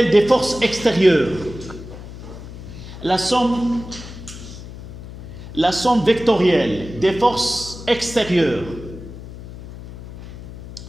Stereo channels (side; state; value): left; noise; hum, 13 dB below the sound